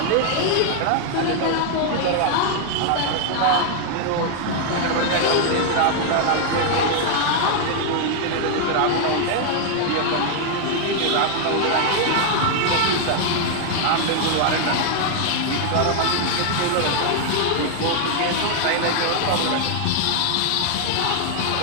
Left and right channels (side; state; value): both; different; correlation 0.00